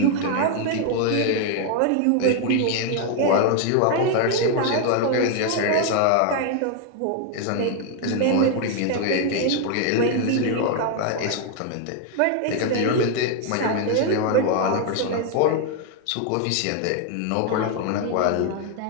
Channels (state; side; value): different; both; correlation 0.01